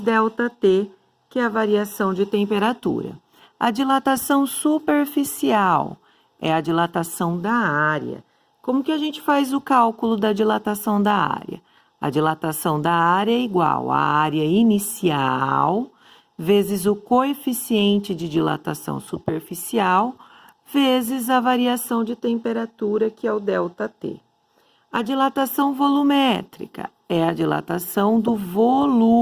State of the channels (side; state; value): both; identical; correlation 1.00